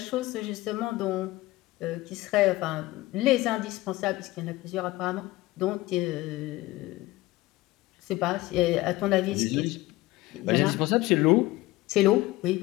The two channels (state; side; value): quieter; right; 18.5 dB